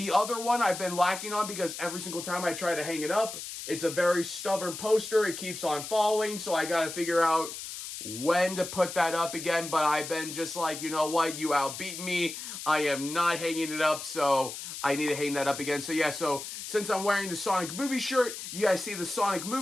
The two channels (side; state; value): left; noise; hiss, 9 dB below the sound